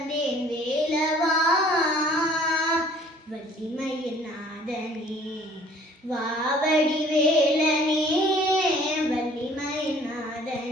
வேலவா. வள்ளிமயில் நாதனே வாவடி வேலனே, வள்ளிமயில்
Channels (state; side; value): normal; both; correlation 0.54